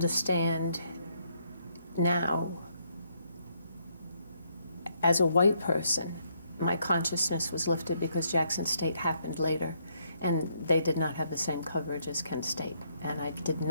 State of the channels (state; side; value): inverted; both; correlation -0.73